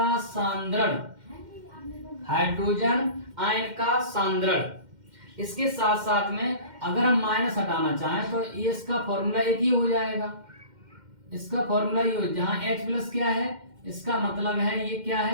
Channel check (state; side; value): late; left; 2.1 ms